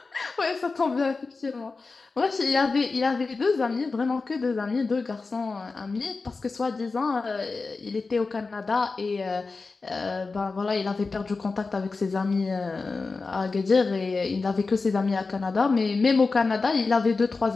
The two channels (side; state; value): right; quieter; 4.1 dB